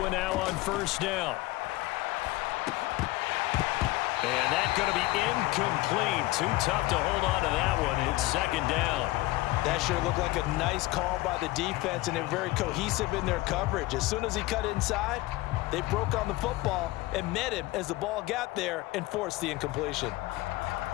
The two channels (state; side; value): quieter; right; 19.3 dB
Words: now on first down. And that's going to be incomplete. Too tough to hold on to that one. It's second down. That sure looked like a nice call by the defense, and they're very cohesive in their coverage. As soon as he cut inside, they broke on the football and met him as the ball got there and forced the incompletion.